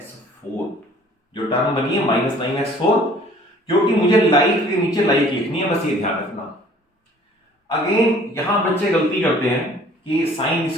जो टर्म बनी है -9x4, क्योंकि मुझे लाइट के नीचे लाइट लिखनी है, बस ये ध्यान रखना। अगेन यहां बच्चे गलती करते हैं कि साइन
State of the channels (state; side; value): normal; both; correlation 0.53